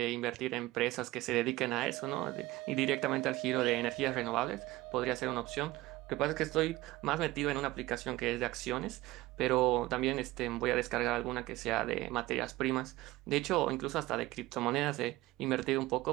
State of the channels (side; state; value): left; quieter; 18.4 dB